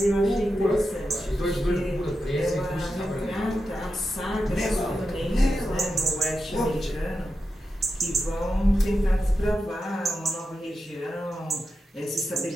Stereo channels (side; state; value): both; normal; correlation 0.89